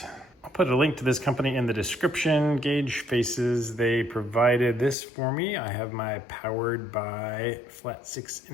I'll put a link to this company in the description. Gauge faces, they provided this for me. I have my Powered by Flat 6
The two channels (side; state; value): right; drops out; at 5.0 s